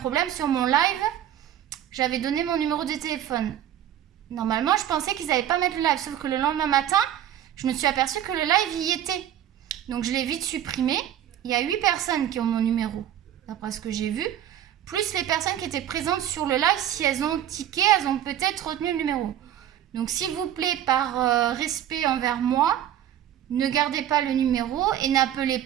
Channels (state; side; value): quieter; left; 11.1 dB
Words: sur mon live. J'avais donné mon numéro de téléphone. Normalement, je pensais qu'ils n'allaient pas mettre le live, sauf que le lendemain matin, je me suis aperçue que le live y était. Donc, je l'ai vite supprimé. Il y a 8 personnes qui ont mon numéro, d'après ce que j'ai vu. Plus les personnes qui étaient présentes sur le live, si elles ont tiqué, elles ont peut-être retenu le numéro. Donc, s'il vous plaît, par respect envers moi, ne gardez pas le numéro et n'appelez